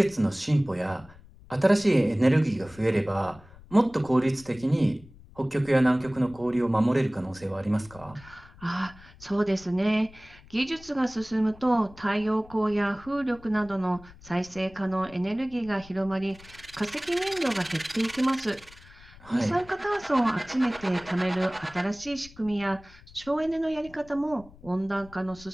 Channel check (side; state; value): left; noise; rumble, 22 dB below the sound